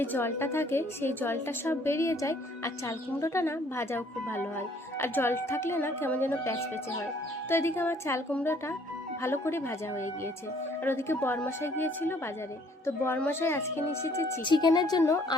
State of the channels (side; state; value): both; normal; correlation 0.61